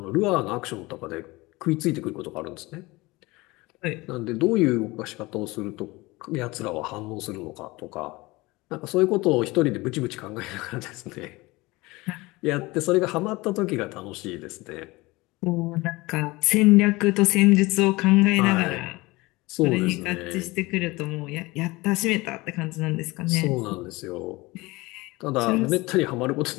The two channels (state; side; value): quieter; right; 22.0 dB